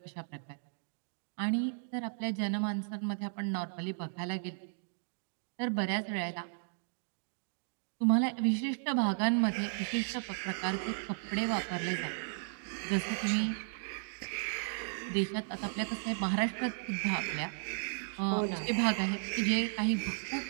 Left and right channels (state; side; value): silent; left; digital silence